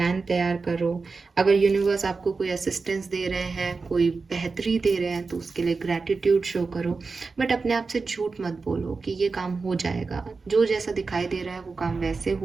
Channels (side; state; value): left; quieter; 4.3 dB